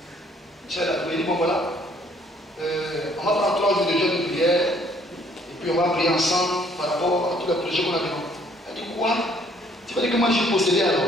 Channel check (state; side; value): normal; both; correlation 0.62